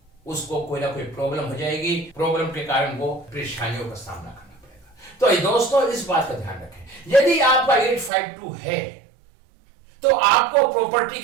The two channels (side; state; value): left; drops out; at 8.1 s